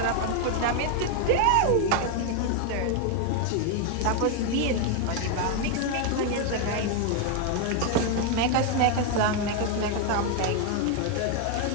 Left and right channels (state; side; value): different; both; correlation 0.01